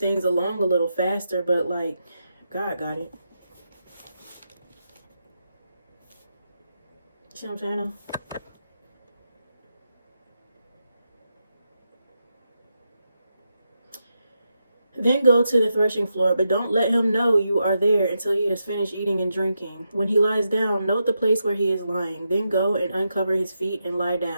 along a little faster, but like, God got it. See what I'm saying? Then go to the threshing floor, but don't let him know you are there until he has finished eating and drinking. When he lies down, note the place where he is lying. Then go and uncover his feet and lie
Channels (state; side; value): inverted; both; correlation -0.85